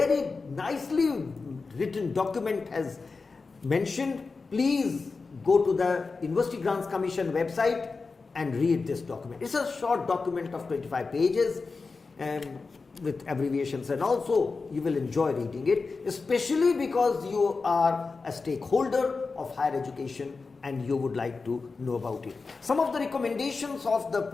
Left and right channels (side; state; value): right; quieter; 4.3 dB